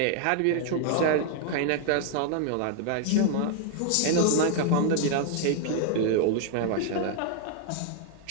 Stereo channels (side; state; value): both; different; correlation 0.00